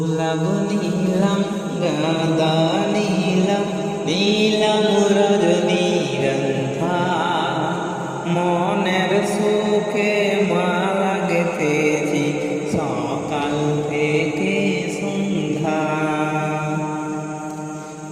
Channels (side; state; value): both; identical; correlation 1.00